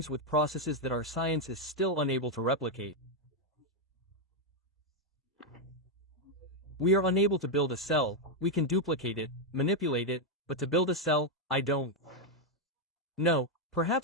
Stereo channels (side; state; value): both; normal; correlation 0.02